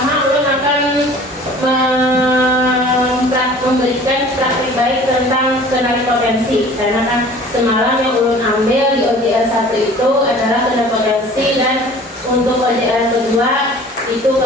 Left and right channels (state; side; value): normal; both; correlation 0.47